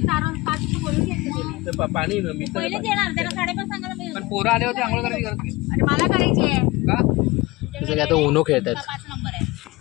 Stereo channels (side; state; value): right; quieter; 21.5 dB